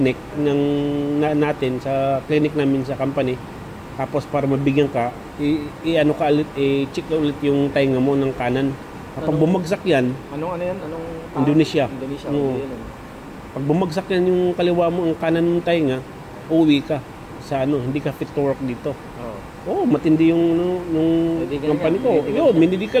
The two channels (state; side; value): identical; both; correlation 1.00